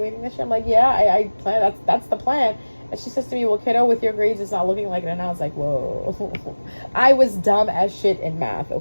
this year? I'm like, yeah, I plan. That's the plan. And she says to me, well, kiddo, with your grades, it's not looking like it. And I was like, whoa. I was dumb as shit in math,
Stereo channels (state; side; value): inverted; both; correlation -1.00